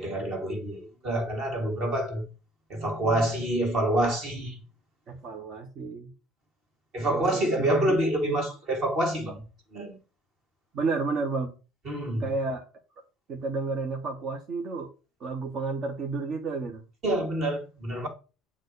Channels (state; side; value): normal; both; correlation 0.57